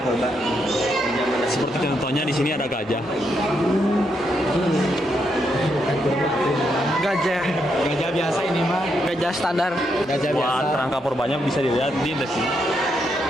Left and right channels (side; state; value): both; normal; correlation 0.79